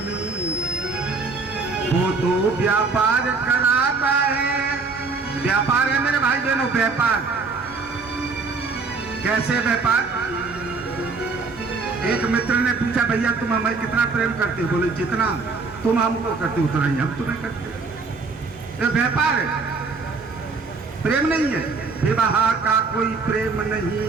वो तो व्यापार कराता है। व्यापार है मेरे भाई बहनों, व्यापार। कैसे व्यापार? एक मित्र ने पूछा, भैया तुम हमें कितना प्रेम करते हो? बोले जितना तुम हमको करते हो उतना ही हम तुम्हें करते हो। ये व्यापार है, प्रेम नहीं है। विवाह का कोई प्रेम नहीं,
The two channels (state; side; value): quieter; left; 4.3 dB